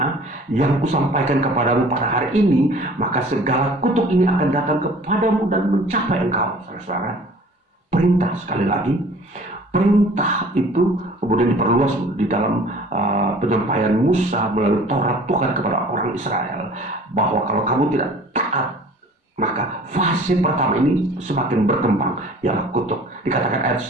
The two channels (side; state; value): both; normal; correlation 0.48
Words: yang kusampaikan kepadamu pada hari ini, maka segala kutuk ini akan datang kepadamu dan mencapai engkau. Saudara-saudara, perintah, sekali lagi, perintah itu kemudian diperluas di dalam penyampaian Musa melalui Taurat Tuhan kepada orang Israel, bahwa kalau kamu tidak taat, maka fase pertama ini semakin berkembang, ialah kutuk. Dikatakan ayat